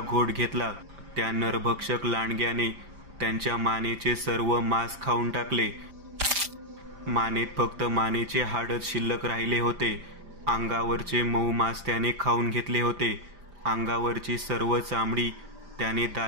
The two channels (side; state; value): left; late; 5.0 ms